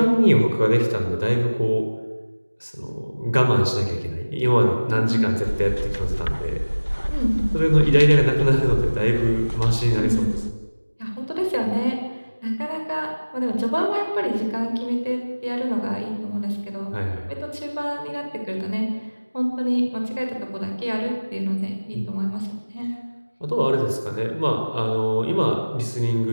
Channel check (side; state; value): both; inverted; correlation -1.00